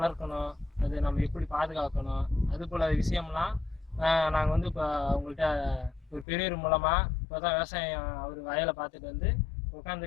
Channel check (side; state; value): right; drops out; at 6.2 s